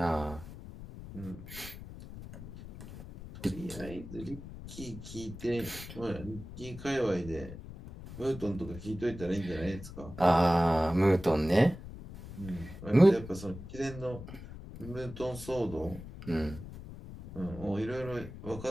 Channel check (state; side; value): noise; left; rumble, 13 dB below the sound